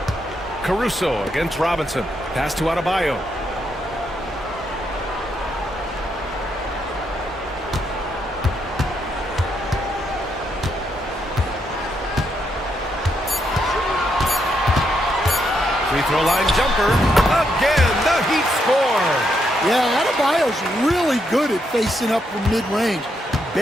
Caruso against Robinson. Pass to Adebayo. Free throw line jumper. Again, the Heat score. Yeah, Adebayo's really good at facing up from mid-range.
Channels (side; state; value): both; normal; correlation 0.78